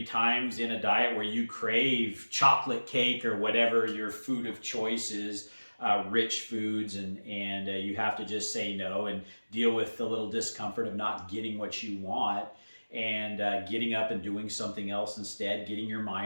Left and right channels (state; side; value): inverted; both; correlation -1.00